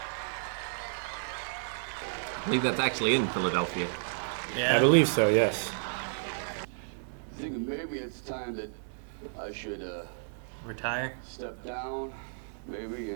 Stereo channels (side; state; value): left; silent; digital silence